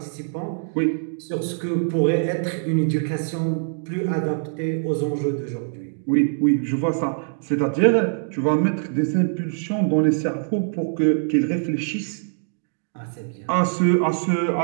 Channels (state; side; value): silent; left; digital silence